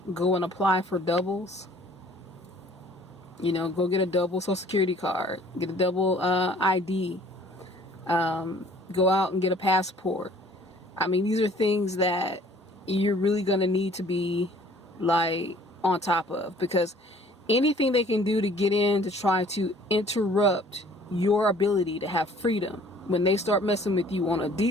Go and apply for doubles. Go get a double social security card, get a double ID, go out and get a passport. I mean, these are things that you're really going to need to be on top of, because anything they can do to get in to try to interrupt your ability to have freedom, when they start messing with you on a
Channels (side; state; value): both; normal; correlation 0.54